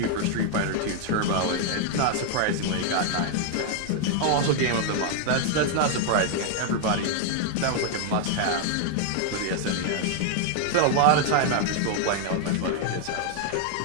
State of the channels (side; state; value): both; different; correlation 0.00